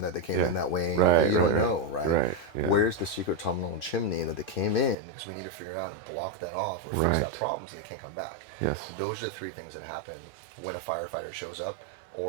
that they came in that way. You don't know, right? Where's the secret tunnel and chimney that they came in? Because we need to figure out and block that off or fix that problem so they can't come back. Those are the three things that happen when a firefighter shows up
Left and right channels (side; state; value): left; drops out; at 5.0 s